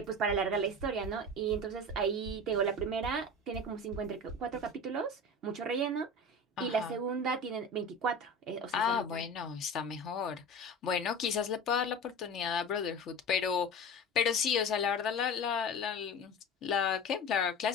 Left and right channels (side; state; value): both; normal; correlation 0.32